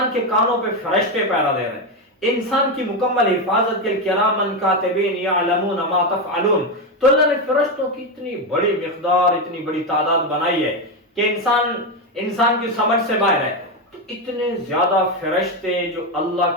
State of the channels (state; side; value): normal; both; correlation 0.10